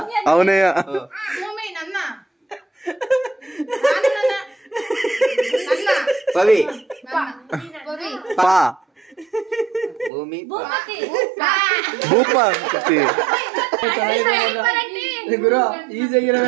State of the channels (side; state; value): left; drops out; at 10.1 s